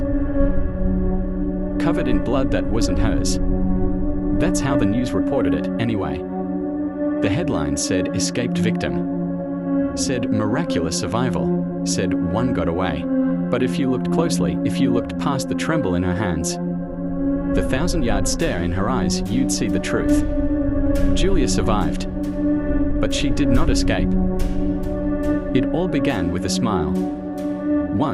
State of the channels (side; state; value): both; identical; correlation 1.00